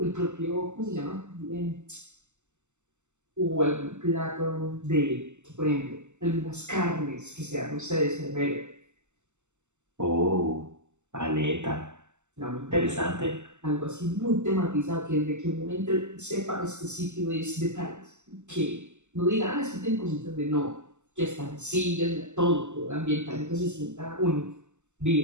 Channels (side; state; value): left; late; 0.83 ms